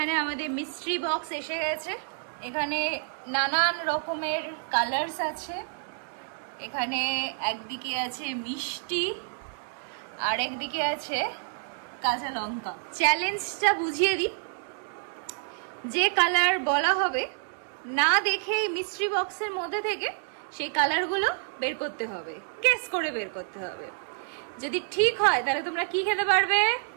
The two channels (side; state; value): left; silent; digital silence